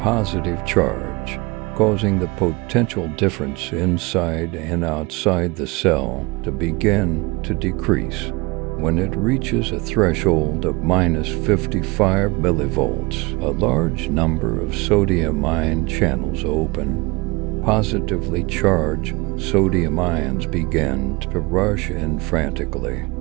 positive charge, causing the potential difference inside and outside the cell to begin to decrease. When it reaches a threshold of minus 55 millivolts, a large number of sodium ion channels open. Positively charged sodium ions begin to rush in frantically,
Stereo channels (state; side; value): quieter; left; 24.9 dB